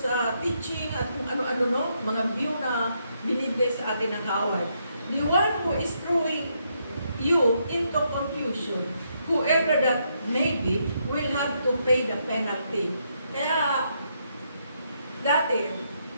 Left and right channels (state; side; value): inverted; both; correlation -0.77